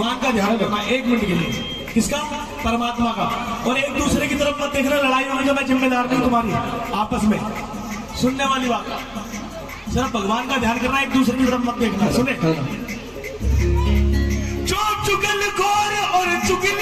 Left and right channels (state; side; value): identical; both; correlation 1.00